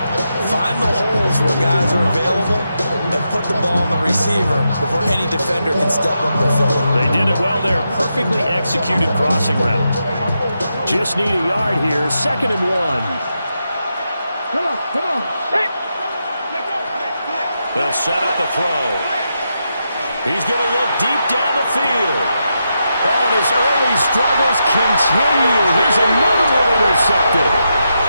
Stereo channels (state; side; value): inverted; both; correlation -0.85